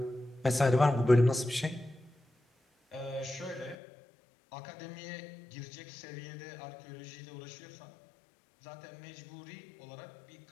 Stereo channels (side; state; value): right; drops out; at 3.8 s